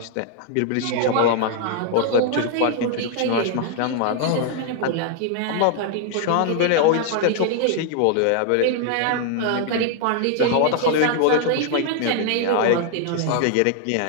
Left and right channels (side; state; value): both; different; correlation 0.00